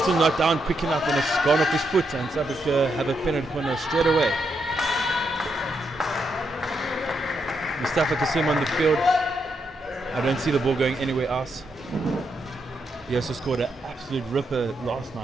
not down quick enough, and it's gone off his foot, and South Africa have a penalty corner straight away. Mustafa Kasim on the field. I don't see the ball going anywhere else. He also scored an absolute ripper last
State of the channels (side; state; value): both; normal; correlation 0.80